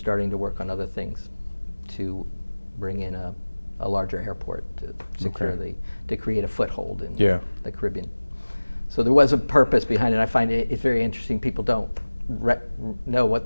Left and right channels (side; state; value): both; inverted; correlation -1.00